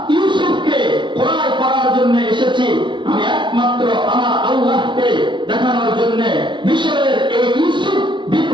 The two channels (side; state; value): left; late; 0.23 ms